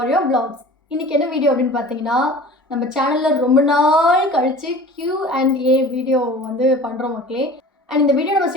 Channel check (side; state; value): both; normal; correlation 0.41